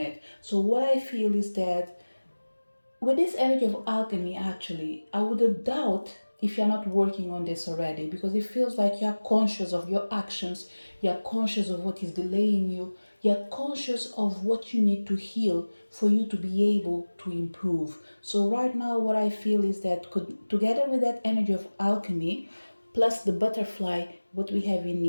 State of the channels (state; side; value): inverted; both; correlation -1.00